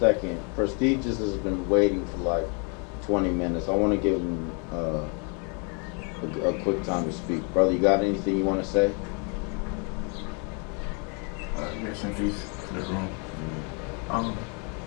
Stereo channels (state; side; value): quieter; right; 36.3 dB